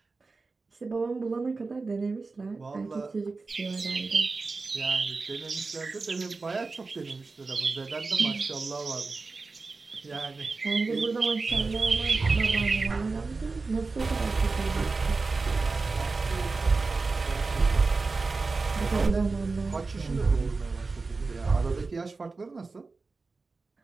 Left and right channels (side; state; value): left; quieter; 4.0 dB